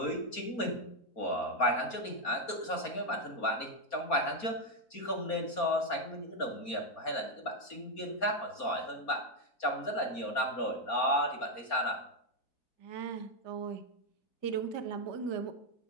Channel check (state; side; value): late; right; 4.3 ms